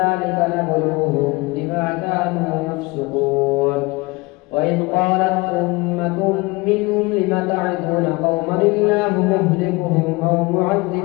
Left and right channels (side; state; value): right; quieter; 24.4 dB